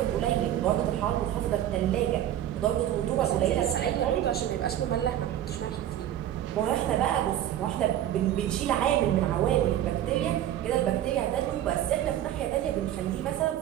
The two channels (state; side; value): quieter; left; 11.8 dB